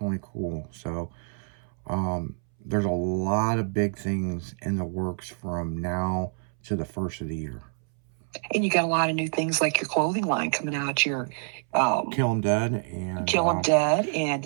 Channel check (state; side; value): silent; left; 60 dB below the other